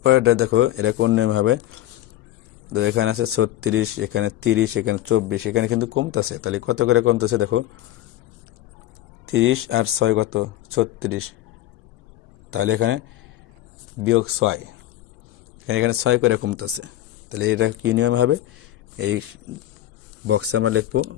এটা দেখো এটা কোন নিয়ম হবে, তো এখানে আছে 36, এখানে 30, এখানে 24। এখানে কিন্তু কমতেছে, তাহলে কত করে কমতেছে দেখো, 30 আর 6 কত, 36। তাহলে এখানে বিয়োগ 6, এখানে 6 করে কমতেছে। তাহলে এটা কী নিয়ম হবে, এই বক্সে আমরা লিখবো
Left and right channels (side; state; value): right; quieter; 13.8 dB